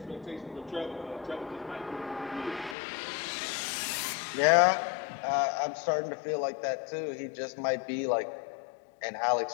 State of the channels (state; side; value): drops out; right; at 2.8 s